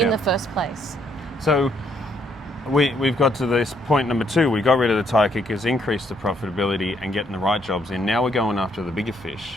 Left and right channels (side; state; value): both; normal; correlation 0.71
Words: the first place. So we've got to this point number 2. We got rid of the tire kickers, increased the profitability and getting the right jobs in. Now we're going after the bigger fish,